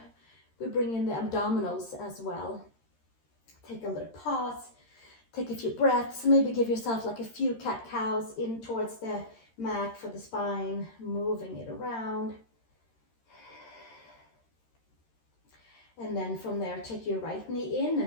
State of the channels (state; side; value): late; right; 13 ms